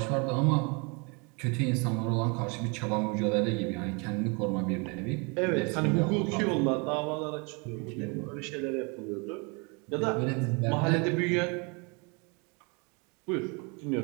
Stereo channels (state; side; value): quieter; left; 31.8 dB